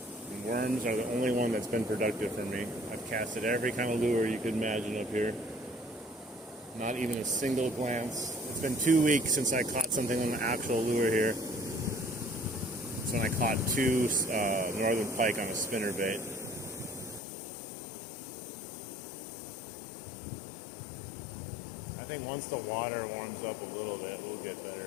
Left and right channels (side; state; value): right; drops out; at 17.2 s